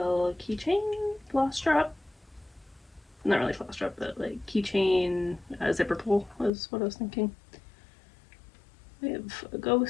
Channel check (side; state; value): right; drops out; at 6.5 s